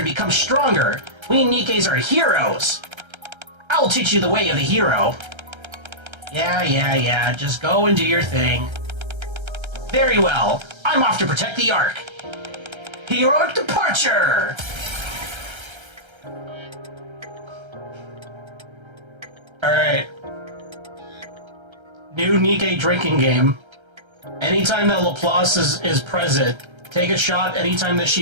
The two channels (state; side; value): late; left; 1.3 ms